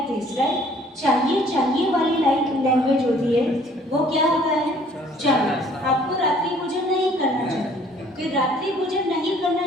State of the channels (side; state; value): both; normal; correlation 0.57